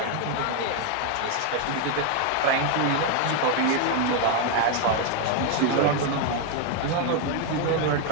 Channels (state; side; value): different; both; correlation 0.00